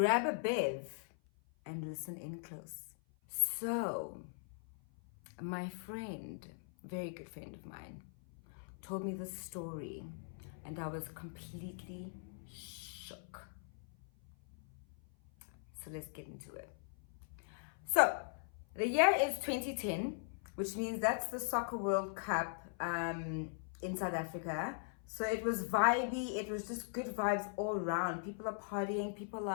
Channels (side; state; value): right; silent; 51 dB below the other